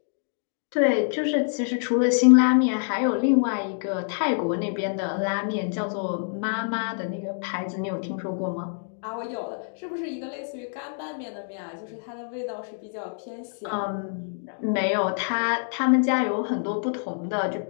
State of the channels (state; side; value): silent; right; digital silence